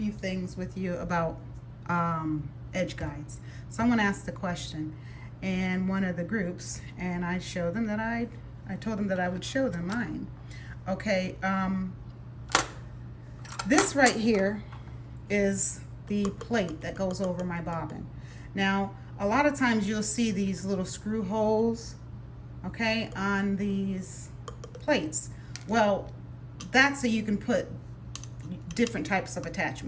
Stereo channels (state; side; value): identical; both; correlation 1.00